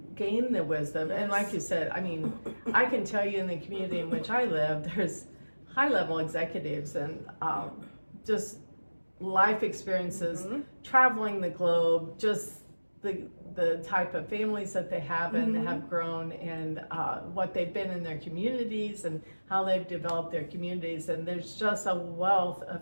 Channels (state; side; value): inverted; both; correlation -1.00